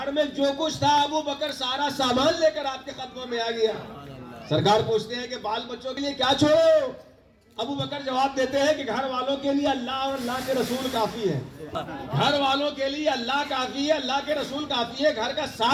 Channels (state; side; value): identical; both; correlation 1.00